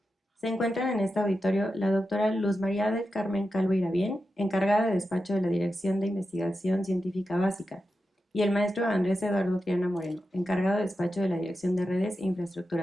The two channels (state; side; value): normal; both; correlation 0.90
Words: Se encuentran en este auditorio la doctora Luz María del Carmen Calvo Irabién, encargada de despacho de la Dirección de Investigación Científica Básica, y el maestro Andrés Eduardo Triana Moreno, encargado de despacho de la Dirección de Redes e